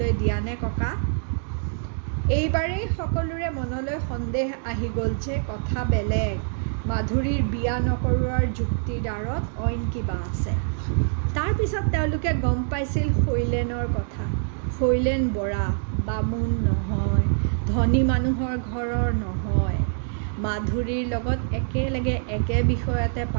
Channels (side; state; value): left; silent; digital silence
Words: দিয়ানে ককা? এইবাৰেই সকলোৰে মনলৈ সন্দেহ আহি গ'ল যে কথা বেলেগ। মাধুৰীৰ বিয়া নকৰোৱাৰ যুক্তিৰ আঁৰত অইন কিবা আছে। তাৰ পিছত তেওঁলোকে গম পাইছিল শৈলেনৰ কথা। শৈলেন বৰা বামুণ নহয়, ধনী মানুহৰ ঘৰৰ নহয়। মাধুৰীৰ লগত একেলগে একে বিষয়তে